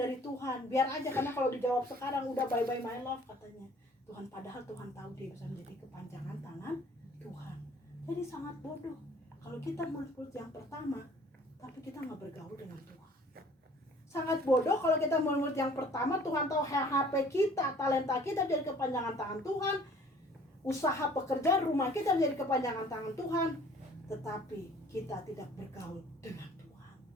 Tuhan. Biar aja, karena kalau dijawab sekarang udah bye-bye my love katanya Tuhan, padahal Tuhan tahu dia bisa menjadi kepanjangan tangan Tuhan. Jadi sangat bodoh kalau kita murid-murid yang pertama tapi kita nggak bergaul dengan Tuhan. Sangat bodoh kalau kita murid yang pertama, Tuhan tahu HP kita, talenta kita jadi kepanjangan tangan Tuhan, usaha pekerjaan rumah kita menjadi kepanjangan tangan Tuhan, tetapi kita tidak bergaul dengan Tuhan.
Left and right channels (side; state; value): both; normal; correlation 0.52